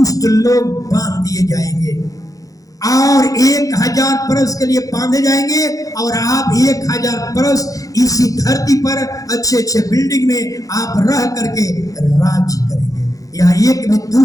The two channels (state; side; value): late; right; 0.17 ms